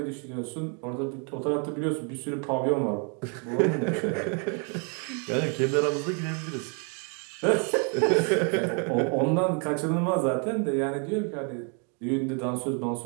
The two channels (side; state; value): left; quieter; 38.3 dB